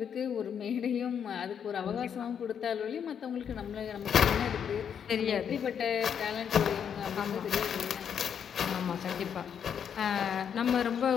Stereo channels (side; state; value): right; quieter; 8.0 dB